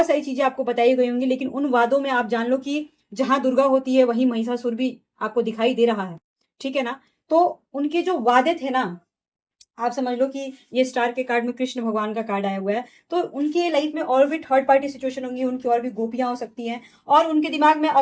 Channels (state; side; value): identical; both; correlation 1.00